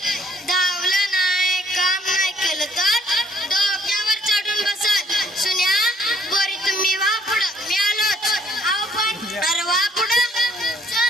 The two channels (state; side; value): normal; both; correlation 0.63